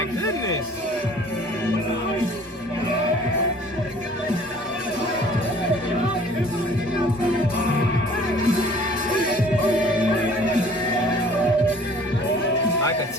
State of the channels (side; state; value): both; normal; correlation 0.52